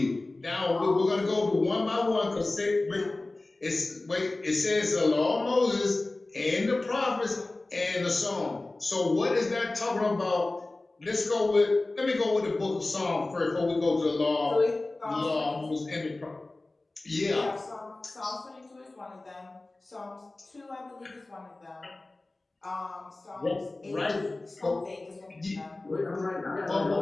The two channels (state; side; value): quieter; right; 3.0 dB